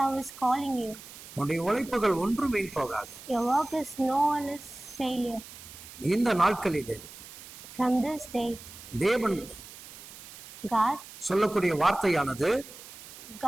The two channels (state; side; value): noise; right; hiss, 16 dB below the sound